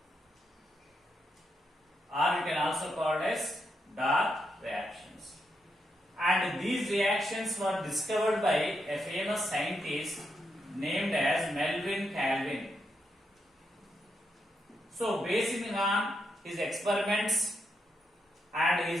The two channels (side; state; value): both; normal; correlation 0.82